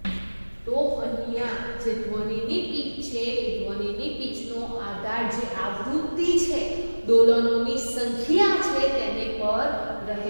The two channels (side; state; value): both; inverted; correlation -1.00